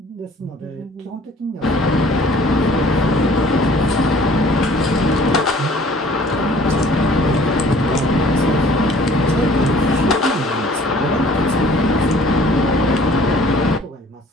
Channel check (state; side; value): normal; both; correlation 0.53